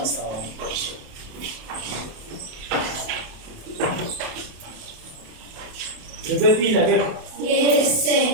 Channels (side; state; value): left; late; 27 ms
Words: so. Repeat again. Yes,